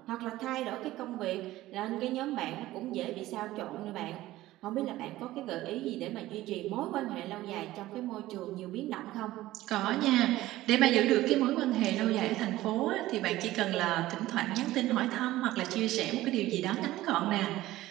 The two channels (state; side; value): quieter; left; 16.2 dB